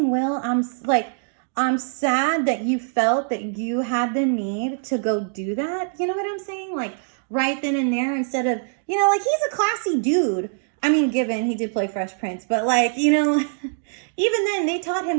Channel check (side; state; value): left; silent; digital silence